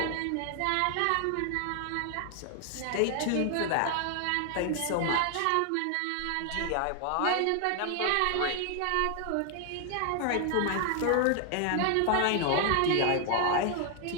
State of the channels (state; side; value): different; both; correlation 0.00